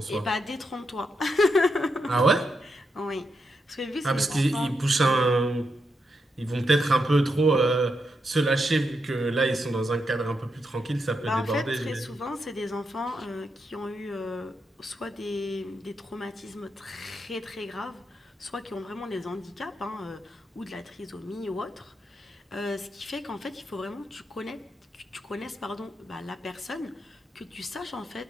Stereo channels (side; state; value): both; normal; correlation 0.83